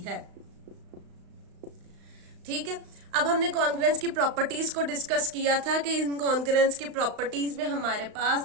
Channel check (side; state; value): left; late; 35 ms